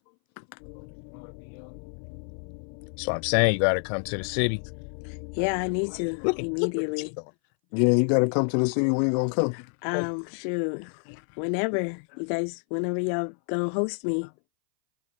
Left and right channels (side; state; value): right; silent; 60 dB below the other